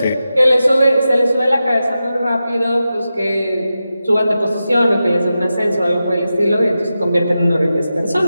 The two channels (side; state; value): both; inverted; correlation -0.91